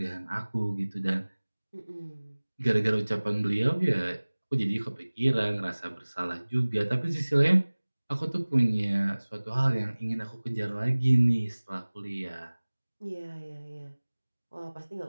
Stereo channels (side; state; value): both; inverted; correlation -1.00